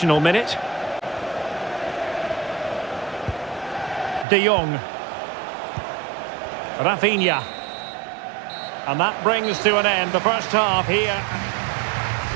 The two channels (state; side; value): drops out; left; at 4.2 s